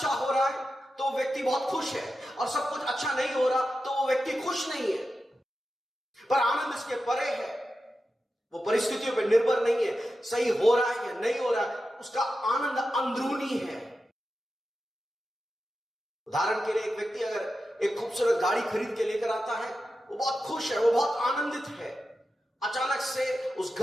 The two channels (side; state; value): both; normal; correlation 0.91